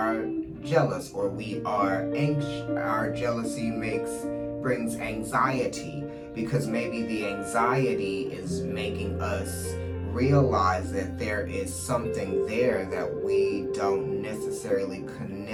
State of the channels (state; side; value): identical; both; correlation 1.00